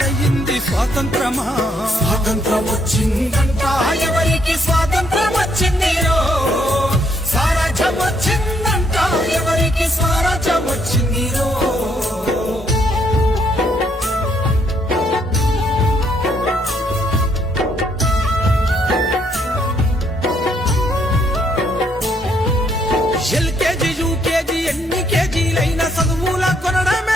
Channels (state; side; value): normal; both; correlation 0.71